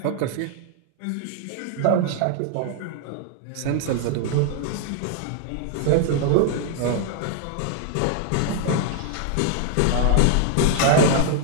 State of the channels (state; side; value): different; both; correlation 0.00